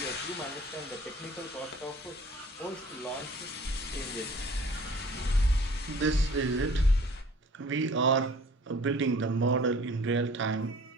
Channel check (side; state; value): both; normal; correlation 0.50